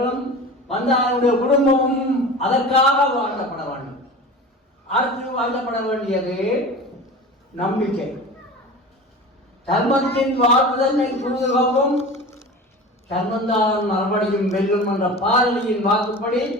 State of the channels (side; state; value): both; normal; correlation 0.35